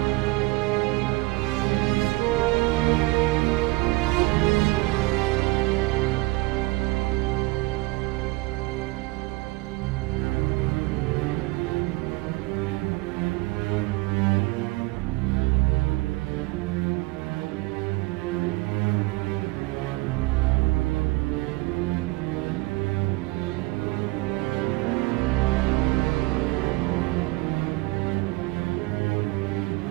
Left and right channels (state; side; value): quieter; left; 22.9 dB